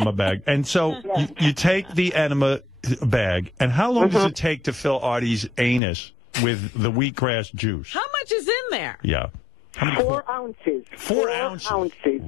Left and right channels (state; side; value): drops out; right; at 5.8 s